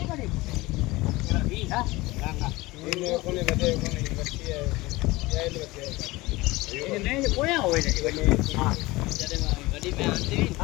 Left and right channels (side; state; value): right; quieter; 20.8 dB